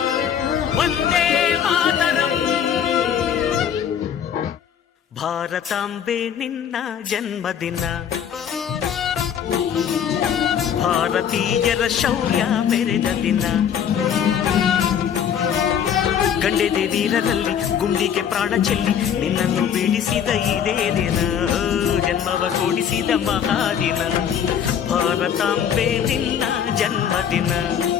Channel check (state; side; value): quieter; right; 8.5 dB